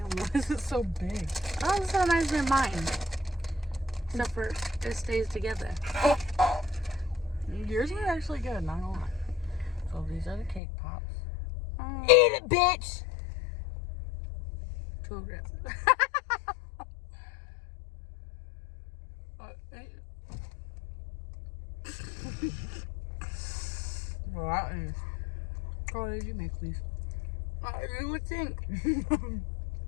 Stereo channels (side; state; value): right; drops out; at 10.6 s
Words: why is it so big? Oh, it's so nice than mine. Except for it stays together. Yours are actually good, not gonna lie. So these are the cake pops. Oh, Eat it, bitch! too aggressive. Well, that is. What did you make, please? You would think.